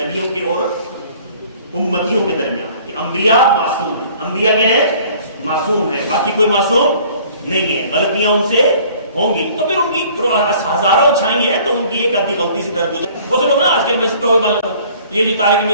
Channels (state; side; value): inverted; both; correlation -0.53